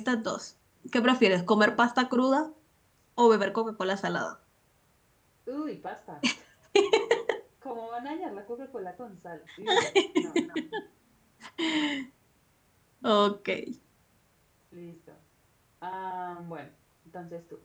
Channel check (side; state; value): both; identical; correlation 1.00